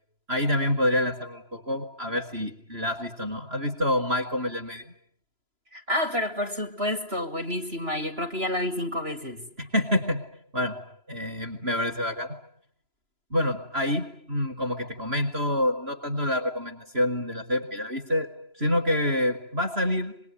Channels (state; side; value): late; left; 3.0 ms